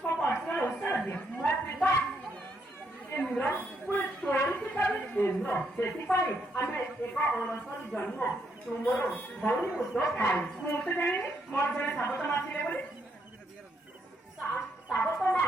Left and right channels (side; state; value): both; normal; correlation 0.75